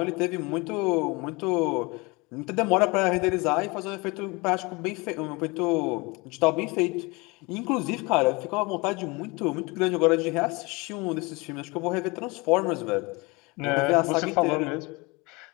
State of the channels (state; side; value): quieter; right; 25.9 dB